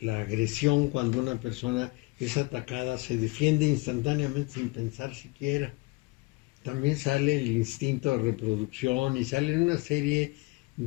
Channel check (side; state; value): right; quieter; 25.2 dB